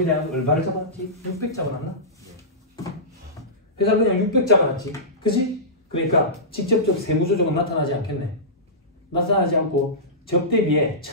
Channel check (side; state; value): both; normal; correlation -0.18